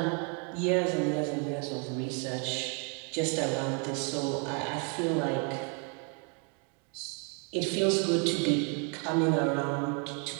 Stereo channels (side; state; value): left; quieter; 37.7 dB